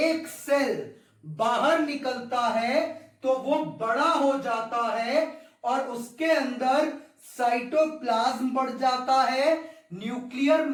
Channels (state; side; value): identical; both; correlation 1.00